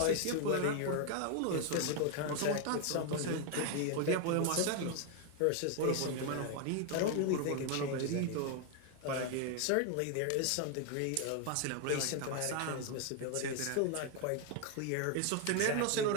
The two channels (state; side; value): different; both; correlation 0.01